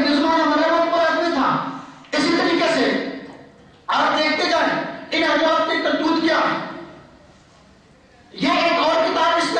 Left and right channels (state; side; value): identical; both; correlation 1.00